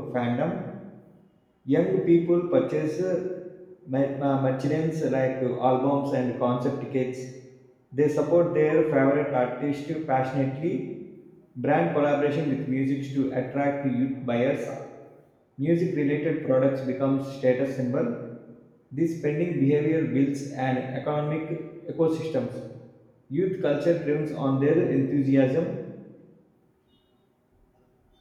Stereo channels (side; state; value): both; identical; correlation 1.00